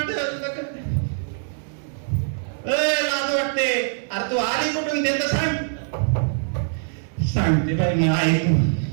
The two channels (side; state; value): left; silent; 61 dB below the other